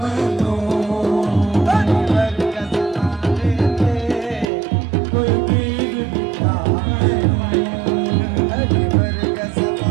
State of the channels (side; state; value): left; drops out; at 4.5 s